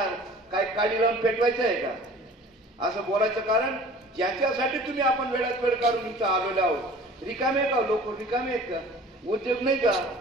काय काडी लावून पेटवायचं आहे का? असं बोलायचं कारण ज्याच्यासाठी तुम्ही आपण वेळात वेळ काढून इथं आलेलो आहोत. रिकामे का लोक? रिकामे आहेत का? उद्योग नाही का?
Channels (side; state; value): both; normal; correlation 0.46